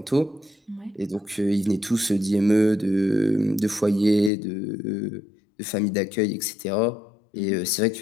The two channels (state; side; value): drops out; right; at 4.3 s